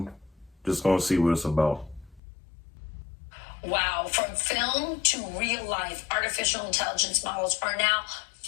just gonna see what it's about. Wow, from film to real life, artificial intelligence models are now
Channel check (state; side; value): drops out; right; at 2.2 s